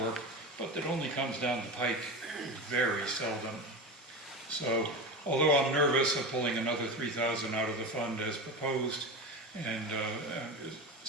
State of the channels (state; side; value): normal; both; correlation 0.24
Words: but that only comes down the pike very seldom. So, although I'm nervous of pulling another $3,000 out of the fund as proposed and